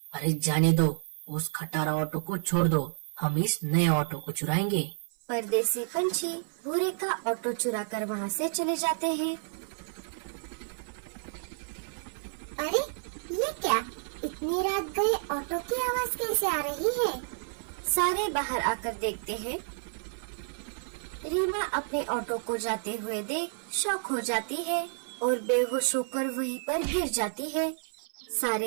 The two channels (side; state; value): left; silent; 58 dB below the other